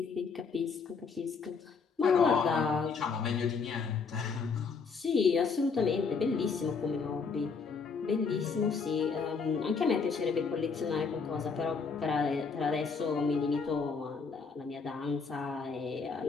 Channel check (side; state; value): right; quieter; 5.2 dB